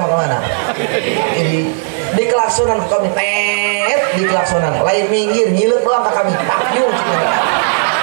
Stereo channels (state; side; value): silent; left; digital silence